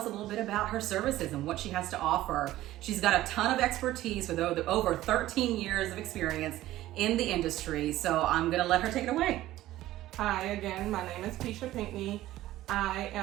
a little bit about her services and what she has to offer. She's got a ton of expertise with over 13 years of experience in the industry, so I'm gonna let her take it away. Hi again, my name is Keshia Pinckney. I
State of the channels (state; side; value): quieter; left; 15.2 dB